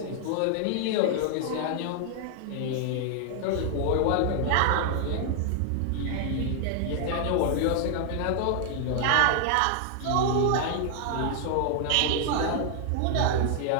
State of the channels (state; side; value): different; both; correlation 0.00